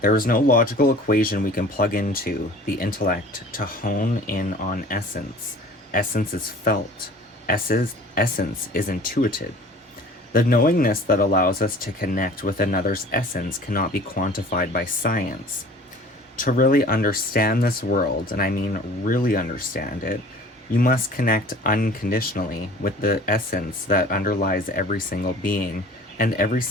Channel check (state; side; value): normal; both; correlation 0.47